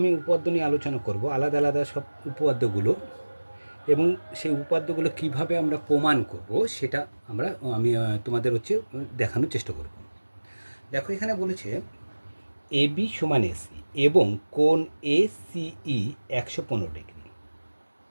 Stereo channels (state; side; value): inverted; both; correlation -1.00